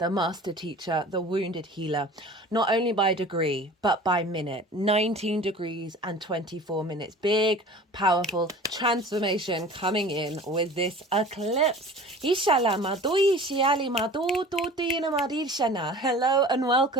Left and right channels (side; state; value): both; normal; correlation 0.41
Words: master teacher, the wounded healer, not only by degree but by minute. 19 degrees and 24 minutes. Big, powerful transformation coming in with this eclipse. Hello and